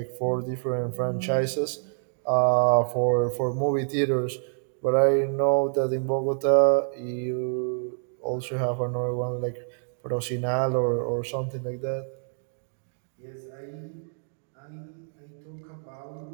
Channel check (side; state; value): left; silent; digital silence